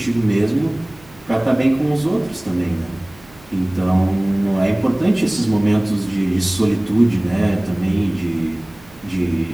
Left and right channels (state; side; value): noise; right; hum, 25 dB below the sound